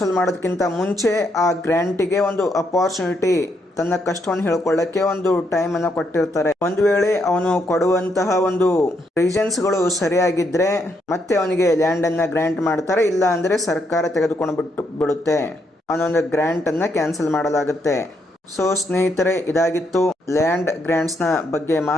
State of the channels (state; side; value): normal; both; correlation 0.77